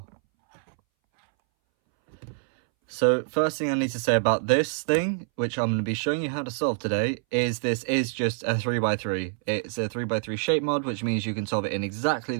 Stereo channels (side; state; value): left; silent; 61 dB below the other